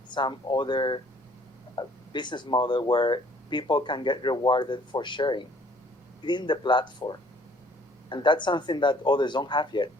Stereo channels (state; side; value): normal; both; correlation 0.58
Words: some other business model where people can get rewarded for sharing within the platform. And that's something that others don't have yet.